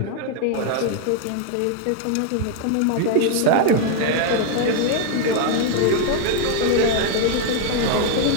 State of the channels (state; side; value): different; both; correlation 0.00